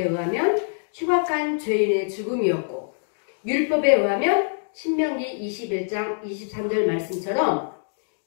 의하면 흉악한 죄인의 죽음이었고, 율법에 의하면 신명기 21장 23절 말씀처럼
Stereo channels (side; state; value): right; silent; digital silence